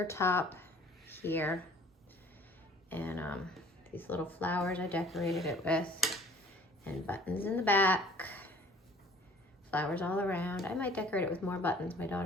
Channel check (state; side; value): normal; both; correlation 0.52